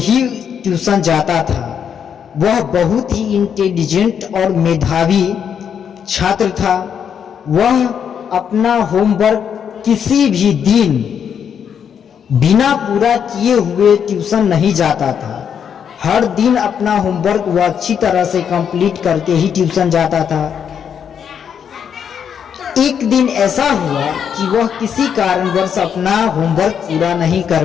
ही ट्यूशन जाता था। वह बहुत ही इंटेलिजेंट और मेधावी छात्र था। वह अपना होमवर्क किसी भी दिन बिना पूरा किए हुए ट्यूशन नहीं जाता था। हर दिन अपना होमवर्क वह अच्छी तरह से कंप्लीट करके ही ट्यूशन जाता था। एक दिन ऐसा हुआ कि वह किसी कारणवश अपना होमवर्क पूरा नहीं कर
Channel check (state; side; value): quieter; right; 7.9 dB